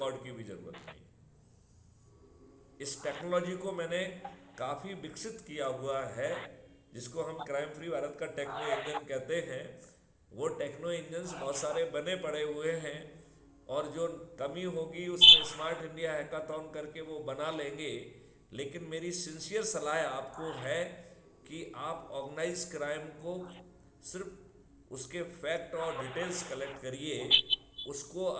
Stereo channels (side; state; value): both; identical; correlation 1.00